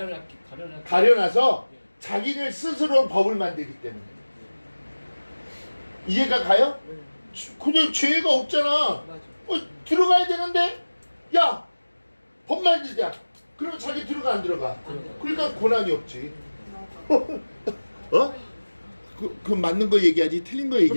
가려놔서 자기를 스스로 법을 만들기 때문에. 이해가 가요? 그냥 죄가 없잖아. 맞아. 들어가야 되는데, 야, 법 만들자. 그러면 자기 들어가 안 들어가? 그러니까 고난이 없지. 그 맞는 거 얘기하지 틀린 거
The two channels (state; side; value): inverted; both; correlation -1.00